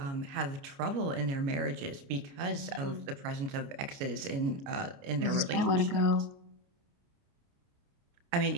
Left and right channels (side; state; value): left; late; 29 ms